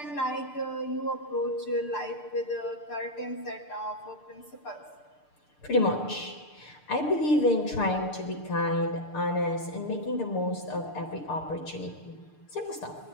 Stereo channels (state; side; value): late; right; 6.7 ms